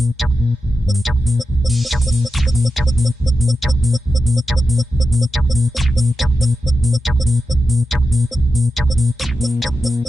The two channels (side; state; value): both; normal; correlation 0.90